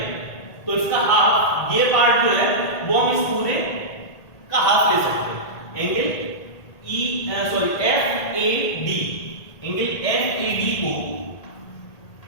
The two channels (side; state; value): right; late; 1.8 ms